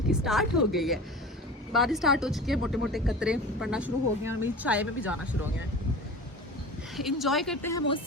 स्टार्ट हो गई है, बारिश स्टार्ट हो चुकी है, मोटे मोटे कतरे पड़ना शुरू हो गए हैं और मेरी चाय में भी जाना शुरू हो गया है। इंजॉय करते हैं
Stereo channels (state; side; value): normal; both; correlation 0.36